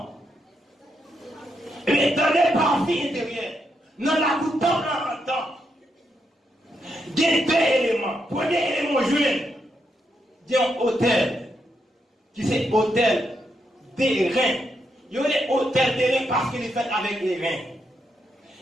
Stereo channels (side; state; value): both; normal; correlation 0.81